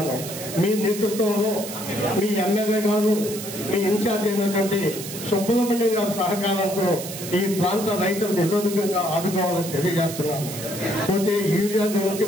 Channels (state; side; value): noise; right; hiss, 9 dB below the sound